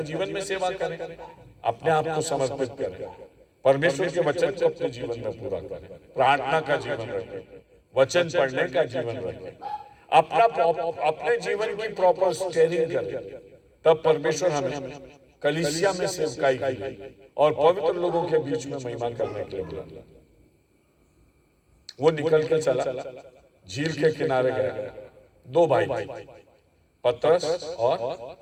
जीवन में सेवा करें, अपने आप को समर्पित करें, परमेश्वर के वचन को अपने जीवन में पूरा करें, प्रार्थना का जीवन रखें, वचन पढ़ने का जीवन रखें, अपने जीवन की प्रॉपर स्टेयरिंग करें। तब परमेश्वर हमें कलीसिया में सेवकाई की और पवित्र लोगों के बीच में महिमा करने के लिए बुलाया। वो निकल के चला, झील के किनारे गया, 2 भाई पतरस और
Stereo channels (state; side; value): identical; both; correlation 1.00